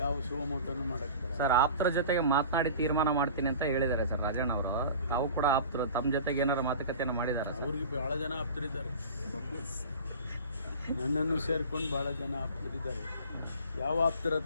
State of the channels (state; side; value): inverted; both; correlation -0.39